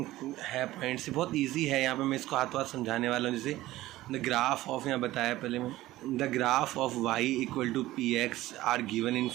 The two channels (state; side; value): quieter; left; 16.4 dB